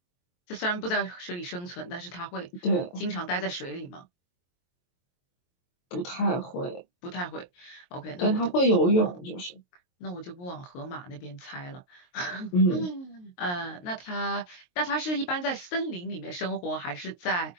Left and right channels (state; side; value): late; right; 23 ms